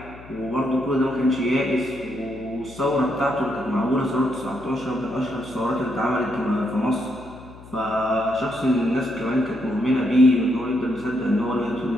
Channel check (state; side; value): noise; left; hum, 19 dB below the sound